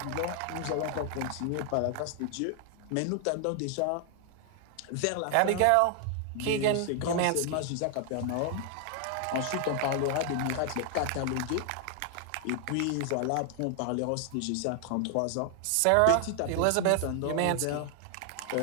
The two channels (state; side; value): different; both; correlation 0.00